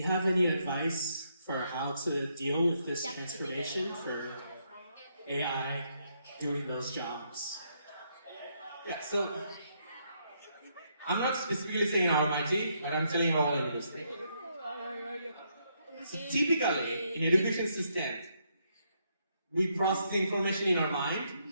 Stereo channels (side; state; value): both; inverted; correlation -0.75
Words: have any advice for how to deal with this transformation for AI doing those jobs? Yeah, so I'm not specifically saying RMIT, but I'm telling all universities. So typically, in education system, we process the information in our